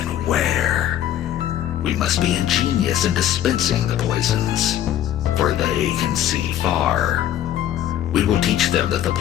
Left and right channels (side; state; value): right; quieter; 11.5 dB